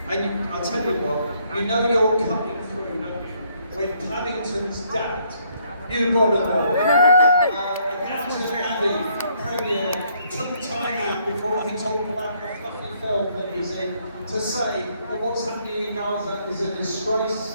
And I'll tell you what, you know you're cutting through, don't you? When Paddington's dad, you got to know, Downton Abbey Premier took time out before he talked about the fluffy film that he's in to say that what's happening in Gaza is a disgrace.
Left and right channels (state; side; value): inverted; both; correlation -0.69